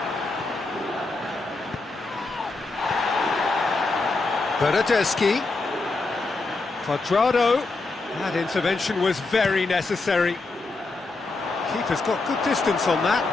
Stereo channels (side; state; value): right; quieter; 3.5 dB